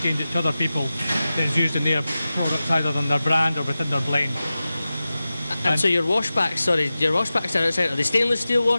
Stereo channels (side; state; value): both; inverted; correlation -0.95